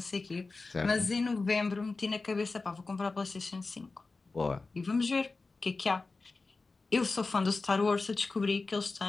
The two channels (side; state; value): right; quieter; 3.8 dB